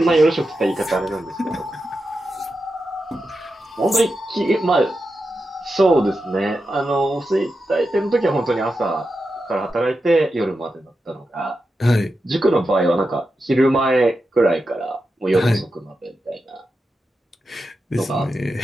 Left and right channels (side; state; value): both; normal; correlation 0.89